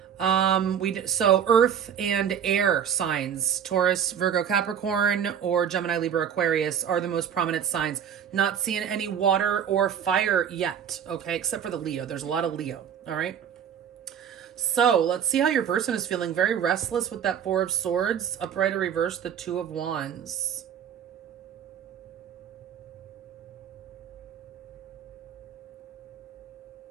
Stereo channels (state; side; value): quieter; left; 8.4 dB